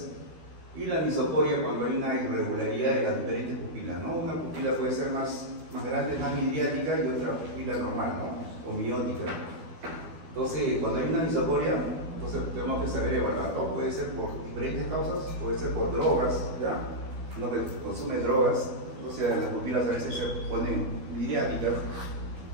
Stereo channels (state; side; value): late; left; 12 ms